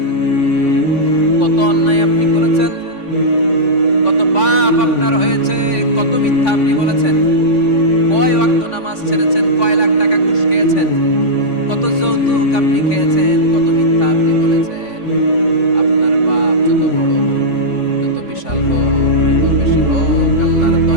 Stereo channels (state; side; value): late; right; 3.5 ms